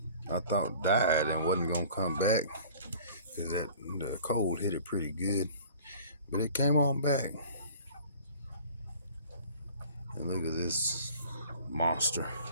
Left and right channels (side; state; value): both; inverted; correlation -0.47